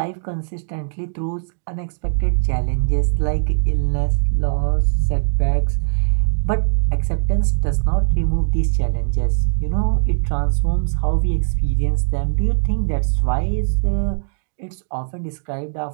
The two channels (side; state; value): left; silent; digital silence